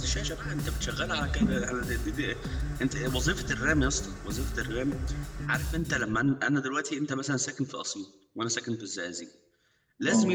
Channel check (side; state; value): both; identical; correlation 1.00